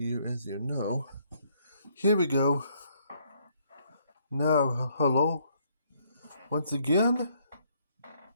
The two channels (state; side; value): inverted; both; correlation -0.69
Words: as you know, here we go. Now, hello, once again.